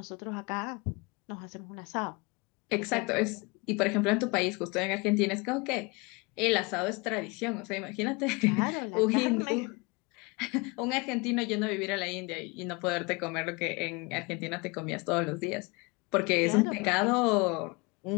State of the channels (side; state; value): right; quieter; 27.6 dB